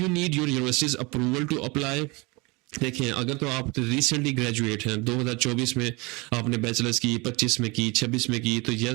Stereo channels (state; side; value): quieter; left; 26.4 dB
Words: need your university's approval to apply? देखिए, अगर तो आप रिसेंटली ग्रेजुएट हैं, 2024 में आपने बैचलर्स की, 25 में की, 26 में की, तो